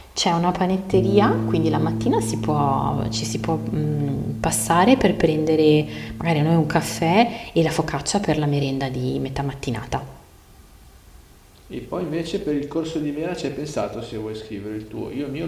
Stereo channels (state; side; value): identical; both; correlation 1.00